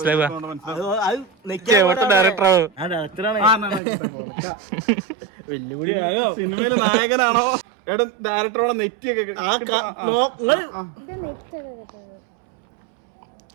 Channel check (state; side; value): drops out; left; at 3.8 s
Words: സിനിമയിലെ നായകനാണോ എടാ ഡയറക്ടറോടെ നെറ്റിയൊക്കെ